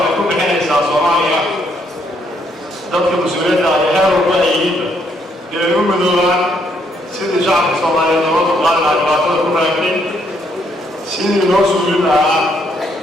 ku bixinaysaa Soomaaliya dadka mas-uuliyadda ah ee heer walba ay yihiinba inay u midoobaan sidii shacabka Soomaaliyeed looga dulqaadi lahaa dhibaatada ku raagtay sidii loo suulin lahaa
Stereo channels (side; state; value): both; normal; correlation 0.71